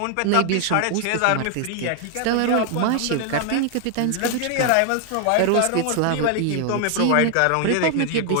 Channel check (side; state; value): both; different; correlation 0.00